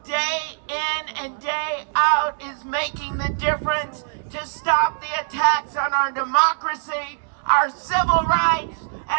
day in and day out is making the difference to stop the attacks on our democracy, our civil rights,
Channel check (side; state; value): left; silent; 64 dB below the other